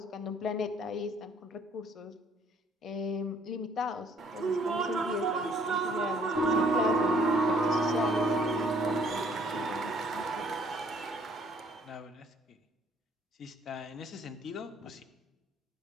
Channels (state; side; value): normal; both; correlation 0.61